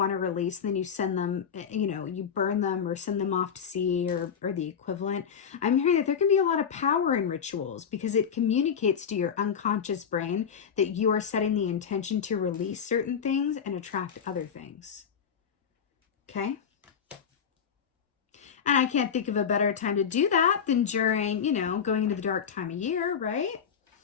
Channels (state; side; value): quieter; right; 7.3 dB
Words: to release and then you send them, you know, you burn them or send them off to sea or the equivalent? I'm hearing that there can be a lot of power in rituals because it communicates to your unconscious brain that you are setting the intention to release certain things and attract other things. Okay? And I can't think of a better time to do that than during, you know, going into the dark time of year, right?